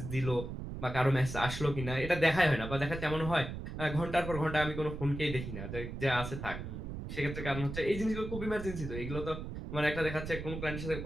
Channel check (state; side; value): noise; right; rumble, 7 dB below the sound